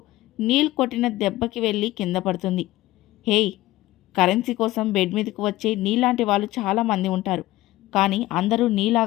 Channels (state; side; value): quieter; right; 17.1 dB